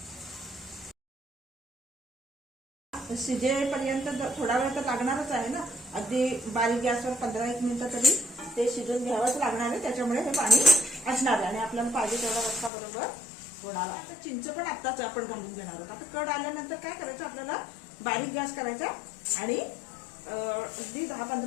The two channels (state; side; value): drops out; right; at 12.7 s